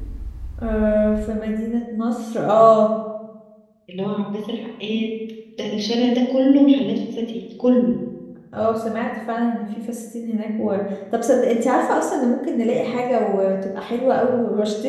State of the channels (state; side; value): identical; both; correlation 1.00